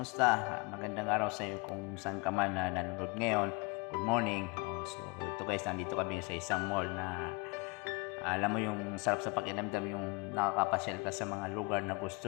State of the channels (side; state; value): right; quieter; 30.0 dB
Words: Magandang araw sa iyo kung saan ka man na nanonood ngayon. Good morning. So ito guys, nandito kami sa isang mall na alam mo yung sarap sa pakiramdam yung nakakapasyal ka sa mga lugar na